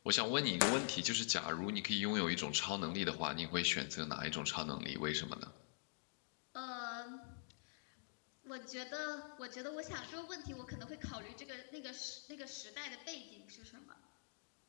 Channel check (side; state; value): right; silent; digital silence